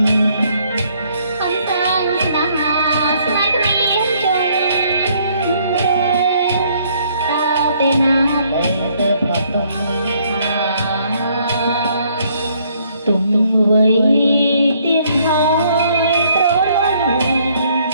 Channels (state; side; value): inverted; both; correlation -0.66